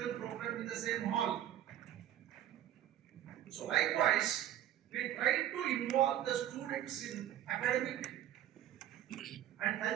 program in the same hall. So likewise, we try to involve the students in academic and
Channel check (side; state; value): left; quieter; 11.7 dB